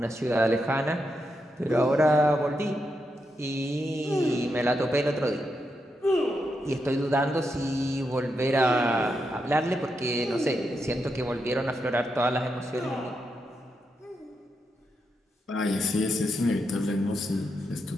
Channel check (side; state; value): both; normal; correlation 0.84